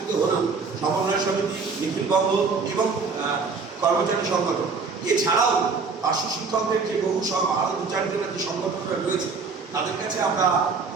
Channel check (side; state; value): left; quieter; 4.8 dB